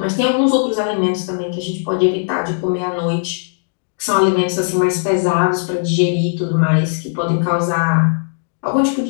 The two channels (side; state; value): right; silent; 68 dB below the other